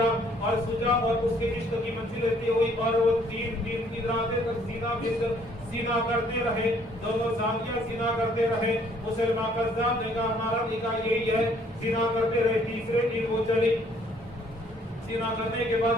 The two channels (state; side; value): normal; both; correlation 0.62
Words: اور سجا اور اس کے عشق کی منزل رہتی ہوئی اور وہ 3 دن کی راتیں تک سینا کرتے رہے، دونوں زانیاں سینا کرتے رہے. مسلمان قذاب نے کہا ہمارا نکاح یہی ہے، سینا کرتے رہے. تیسرے دن وہ چلی. سینا کرنے کے